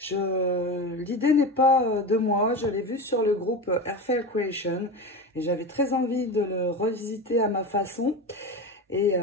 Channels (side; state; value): both; normal; correlation 0.24